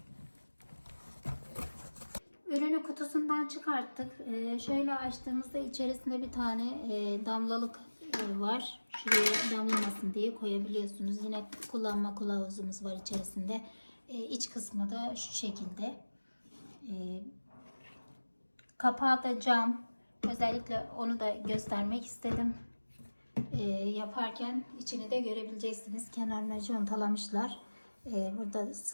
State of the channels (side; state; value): both; inverted; correlation -1.00